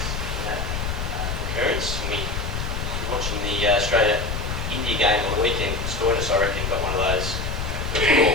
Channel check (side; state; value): left; noise; rumble, 3 dB below the sound